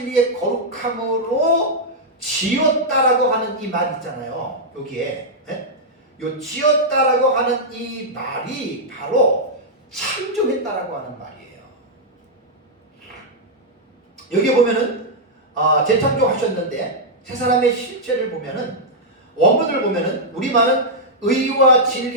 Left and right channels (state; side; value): normal; both; correlation -0.06